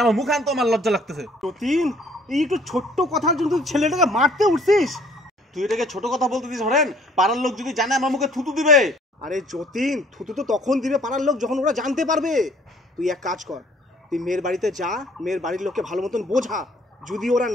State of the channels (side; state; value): both; normal; correlation 0.58